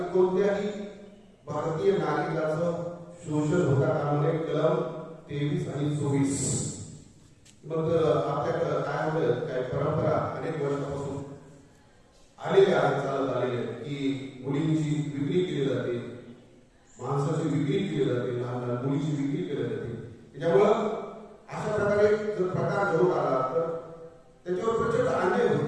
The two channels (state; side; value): identical; both; correlation 1.00